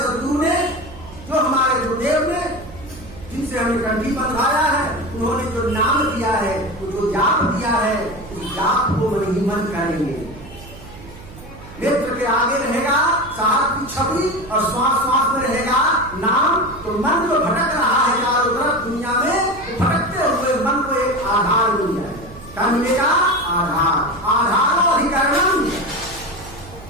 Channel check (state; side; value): noise; right; hum, 18 dB below the sound